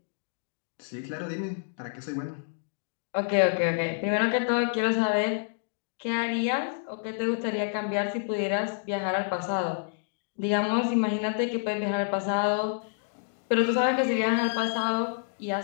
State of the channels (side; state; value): right; silent; digital silence